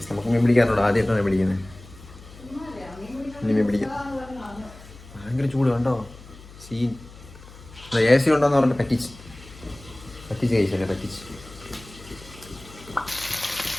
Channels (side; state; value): left; noise; hum, 19 dB below the sound